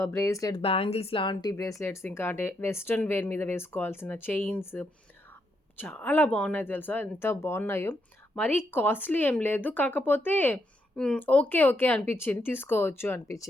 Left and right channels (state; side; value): normal; both; correlation 0.79